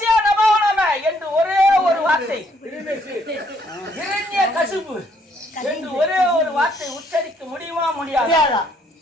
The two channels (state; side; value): normal; both; correlation 0.68